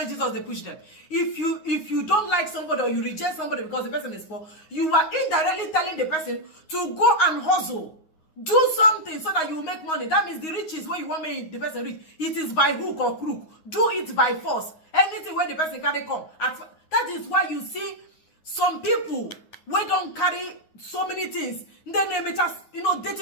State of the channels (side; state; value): right; late; 9.5 ms